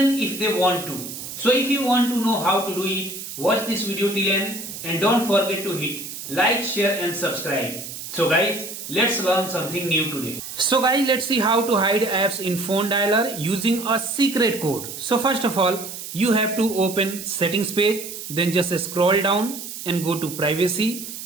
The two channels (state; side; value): noise; right; hiss, 9 dB below the sound